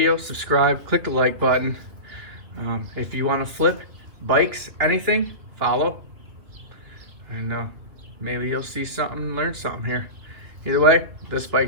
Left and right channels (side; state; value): left; late; 3.0 ms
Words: subscribe, click the like button. If you want to flip bikes, anything, follow. And maybe you'll see something, learn something here. Either way, this